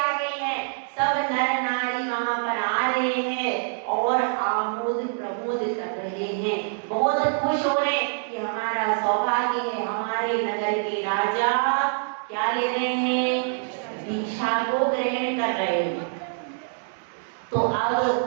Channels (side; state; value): left; silent; digital silence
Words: गई है। सब नर नारी वहां पर आ रहे हैं और आमोद प्रमोद कर रहे हैं, बहुत खुश हो रहे हैं कि हमारा सौभाग्य है, हमारे नगर के राजा क्या ले रहे हैं? दीक्षा को ग्रहण कर रहे हैं। तो